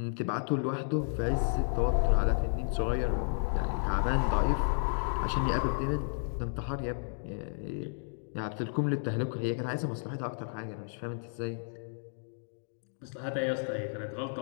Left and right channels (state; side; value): silent; right; digital silence